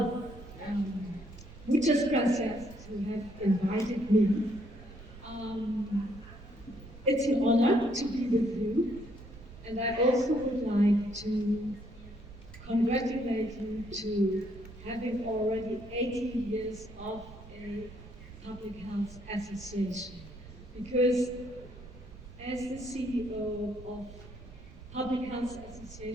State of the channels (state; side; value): noise; right; rumble, 17 dB below the sound